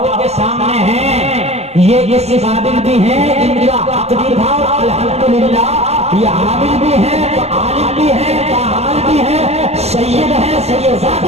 के सामने हैं, ये इस काबिल भी हैं, इनका तकदीर था अल्हम्दुलिल्लाह। ये आमिल भी हैं, तो आलिम भी हैं, कामिल भी हैं, सैयद है,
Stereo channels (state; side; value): late; left; 0.31 ms